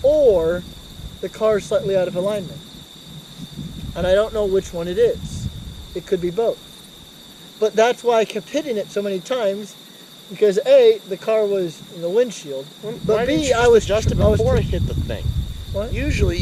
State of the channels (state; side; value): identical; both; correlation 1.00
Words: or the car's slightly out of alignment, and I don't know which one it is. It could be both. But that's why I kept hitting it so many times, because A, the car was in the windshield, but Why didn't B, you I was adjust it before it hit the thing. What? Usually